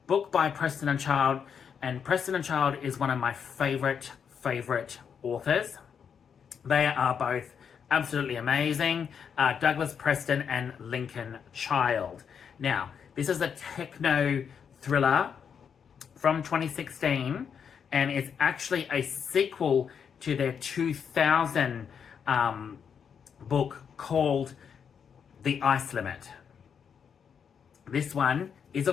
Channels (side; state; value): right; quieter; 7.1 dB